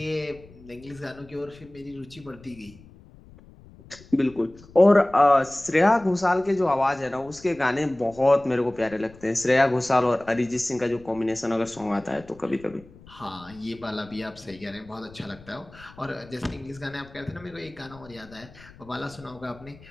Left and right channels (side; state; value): left; noise; rumble, 22 dB below the sound